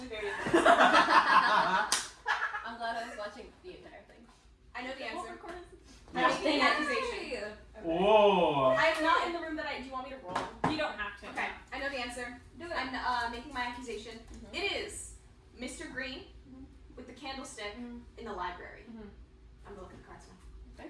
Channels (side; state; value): both; identical; correlation 1.00